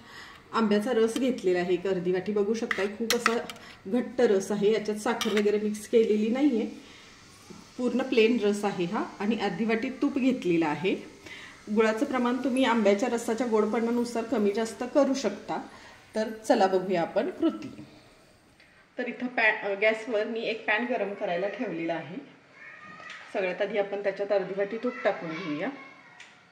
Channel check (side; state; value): both; identical; correlation 1.00